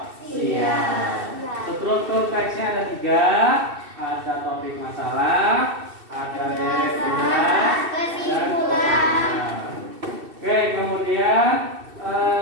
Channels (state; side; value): late; left; 2.7 ms